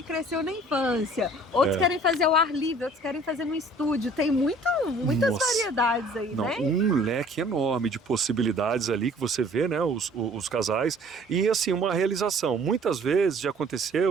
cresceu na infância, outros querem fazer ao ar livre, outros querem fazer no estúdio. Tem muitas variedades aí, né? Um leque enorme de possibilidades ali que você vê, né? Os casais. E assim, uma realização. Muitas vezes já aconteceu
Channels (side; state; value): both; normal; correlation 0.53